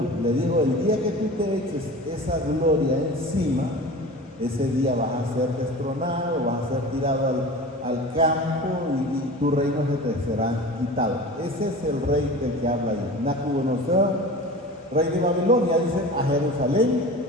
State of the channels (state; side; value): normal; both; correlation 0.35